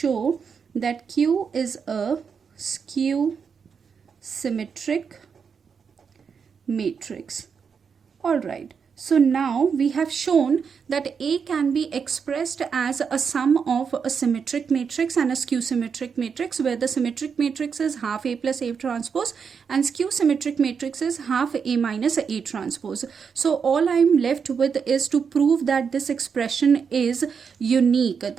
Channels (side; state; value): left; quieter; 6.3 dB